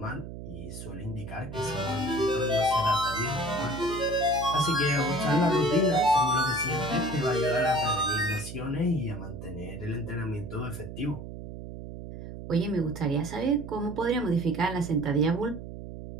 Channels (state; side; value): noise; right; hum, 10 dB below the sound